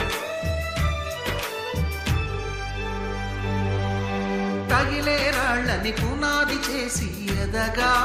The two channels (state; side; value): identical; both; correlation 1.00